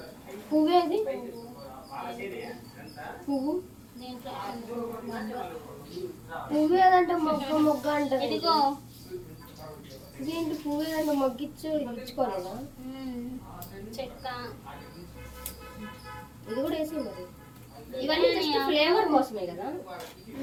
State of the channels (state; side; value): identical; both; correlation 1.00